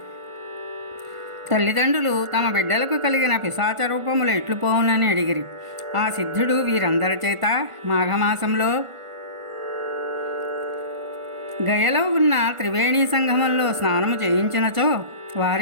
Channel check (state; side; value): late; left; 1.5 ms